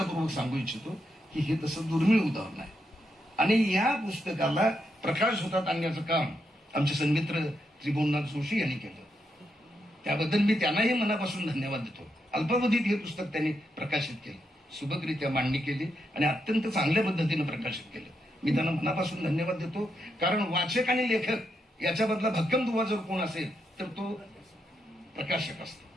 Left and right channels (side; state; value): both; normal; correlation 0.82